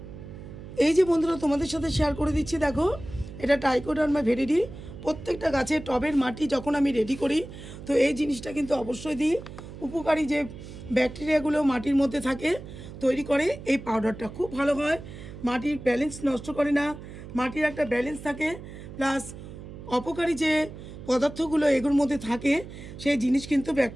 এই যে বন্ধুরা তোমাদের সাথে শেয়ার করে দিচ্ছি, দেখো এটা ট্রাইকোডার্মা ভিরিডি। প্রত্যেকটা গাছের টবের মাটি যখন আমি রেডি করি তো এই জিনিসটা কিন্তু অবশ্যই দিই। উপকারী যে ব্যাকটেরিয়াগুলো মাটির মধ্যে থাকে তৈরি করে এই পাউডারটা, খুব ভালো হয়। মাটির ব্যালেন্স নষ্ট করে না, মাটির একটা ব্যালেন্স থাকে, প্লাস অপকারী যে পদার্থগুলো এগুলোর মধ্যে থাকে সেই জিনিস কিন্তু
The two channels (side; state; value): right; noise; hum, 13 dB below the sound